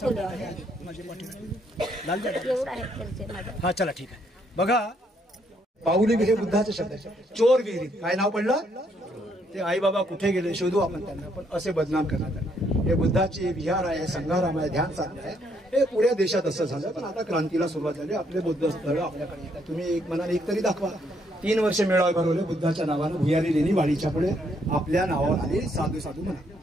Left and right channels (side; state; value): both; normal; correlation 0.71